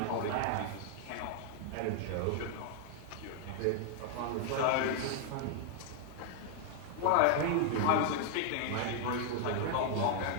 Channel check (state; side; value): different; both; correlation 0.00